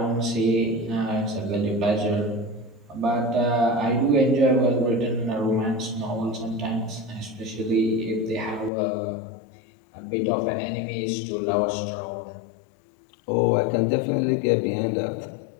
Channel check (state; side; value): drops out; right; at 8.7 s